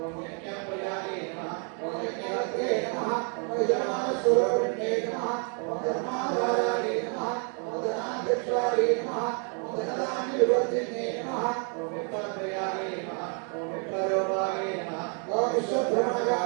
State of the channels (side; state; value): left; quieter; 39.7 dB